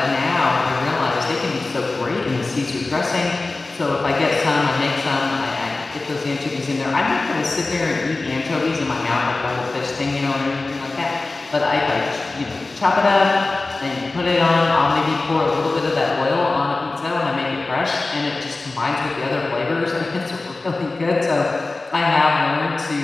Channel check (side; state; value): right; quieter; 3.4 dB